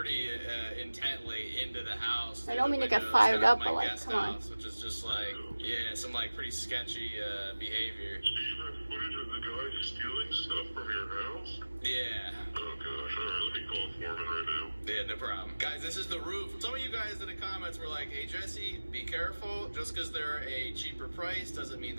intently into the house. I don't mean to get Windows, fired kind of up, my but like, guest come on. house, which is just like, yeah, some like pretty sketchy behavior. Do you have footage of the guy stealing stuff from your house? Yeah. Oh gosh, alright, let me call Foreman right now. Yeah, no problem. Guys, this is the roof. Some of you guys in the comments were like, hey, Jesse, be careful. Just because they're a cheaper price doesn't mean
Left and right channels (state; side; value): inverted; both; correlation -1.00